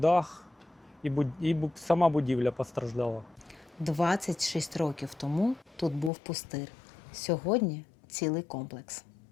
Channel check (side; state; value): right; drops out; at 6.1 s